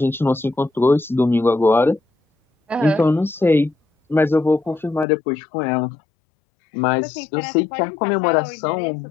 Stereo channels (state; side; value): drops out; right; at 5.1 s